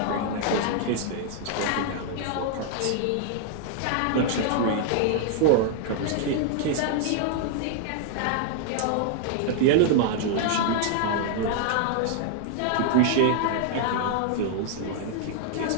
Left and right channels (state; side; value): different; both; correlation -0.01